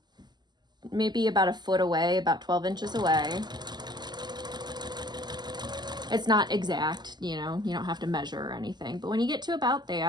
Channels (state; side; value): late; left; 0.21 ms